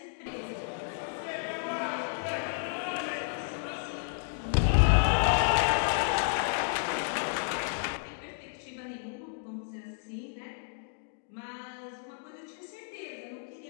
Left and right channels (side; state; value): right; silent; digital silence